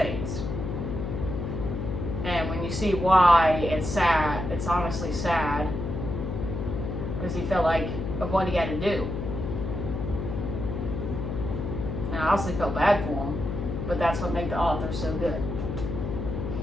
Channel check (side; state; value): left; noise; hum, 4 dB below the sound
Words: And when you see why, it's sad. It's honestly sad. Because he felt like of what he had to do. And I honestly felt bad for him. But that's what made the author so good.